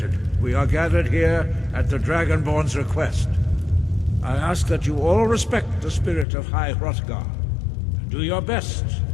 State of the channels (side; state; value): right; drops out; at 6.2 s